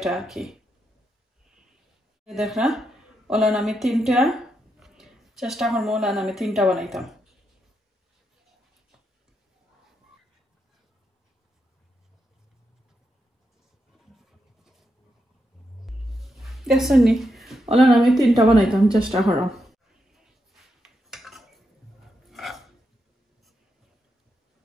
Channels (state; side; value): normal; both; correlation 0.83